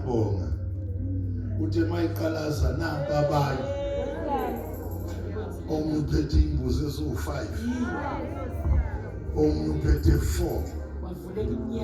Uthe mayiqalaza namba abanye. Omunye uphethe imbuzi eziwu5. Omunye uphethe 4. Wavuleka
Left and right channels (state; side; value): identical; both; correlation 1.00